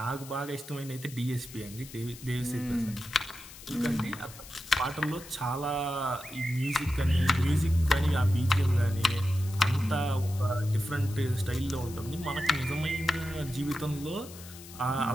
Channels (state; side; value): noise; left; hiss, 16 dB below the sound